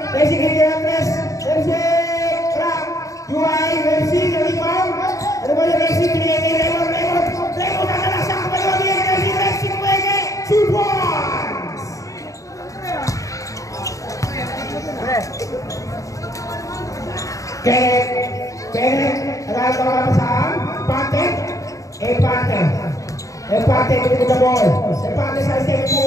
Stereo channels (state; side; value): late; right; 0.16 ms